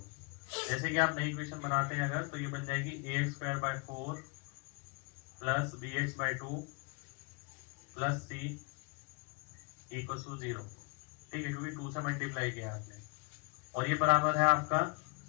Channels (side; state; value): right; quieter; 33.0 dB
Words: जैसे कि आप नई इक्वेशन बनाते हैं अगर, तो ये बन जाएगी A x square by 4 plus B x by 2 plus C equal to 0। ठीक है, क्योंकि 2 से मल्टीप्लाई किया आपने, और ये बराबर है आपका